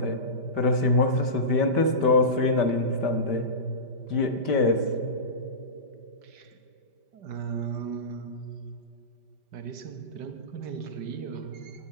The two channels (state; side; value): late; left; 5.1 ms